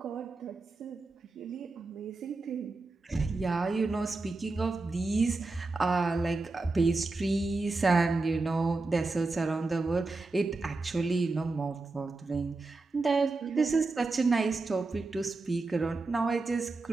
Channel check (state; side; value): quieter; left; 3.5 dB